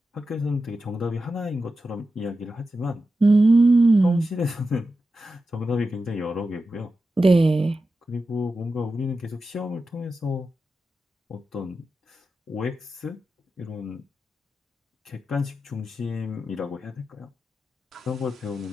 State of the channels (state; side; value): normal; both; correlation 0.91